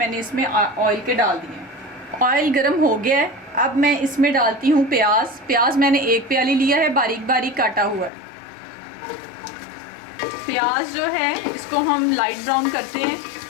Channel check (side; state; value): right; drops out; at 8.1 s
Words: इसमें ऑयल के डाल दिए। ऑयल गर्म हो गया है, अब मैं इसमें डालती हूँ प्याज। प्याज मैंने 1 प्याली लिया है, बारीक बारीक काटा हुआ है। प्याज जो है इसको हम लाइट ब्राउन करते हैं